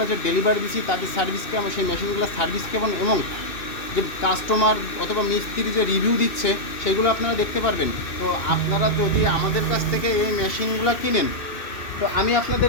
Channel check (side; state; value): right; late; 2.6 ms